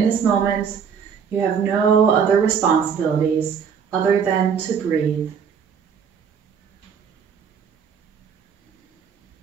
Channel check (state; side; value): quieter; left; 6.9 dB